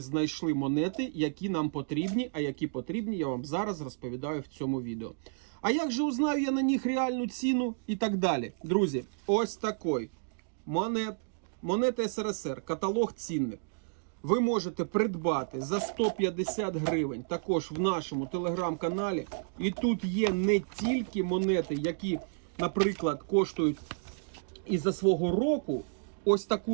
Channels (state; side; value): silent; left; digital silence